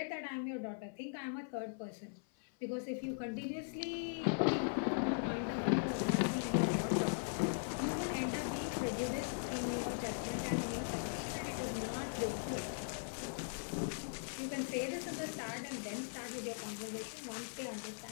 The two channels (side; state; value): right; silent; 51 dB below the other